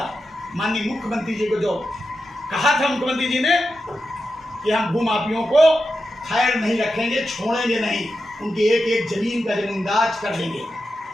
माननीय मुख्यमंत्री जी को जो कहा था मुख्यमंत्री जी ने कि हम भू माफियों को खैर नहीं रखेंगे, छोड़ेंगे नहीं, उनकी एक एक जमीन का जमींदाज कर देंगे।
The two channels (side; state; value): both; normal; correlation 0.89